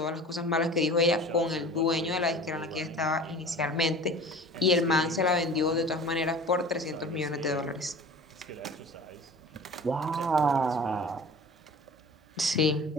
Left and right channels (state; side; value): normal; both; correlation 0.40